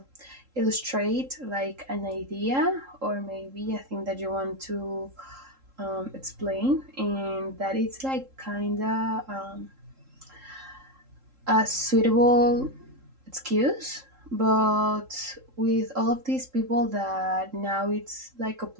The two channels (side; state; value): left; late; 3.7 ms